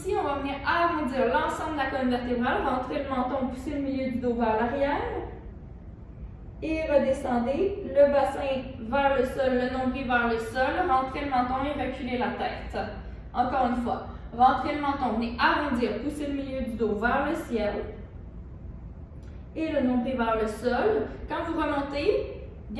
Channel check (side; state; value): both; identical; correlation 1.00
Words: on va venir arrondir l'ensemble de la colonne vertébrale, rentrer le menton, pousser le milieu du dos vers l'arrière. Et redescendez le bassin vers le sol, le nombril vers le sol, rentrez le menton et reculez la tête. Encore une fois, rentrez le menton, venez arrondir, pousser le milieu du dos vers le ciel et le nombril vers le sol. Quand vous remontez,